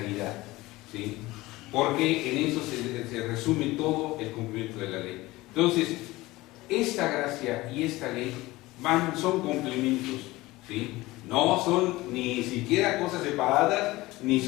¿sí?, porque en eso se resume todo el cumplimiento de la ley. Entonces, esta gracia y esta ley son complementos, ¿sí?, no son ni siquiera cosas separadas, ni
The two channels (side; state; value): right; quieter; 19.5 dB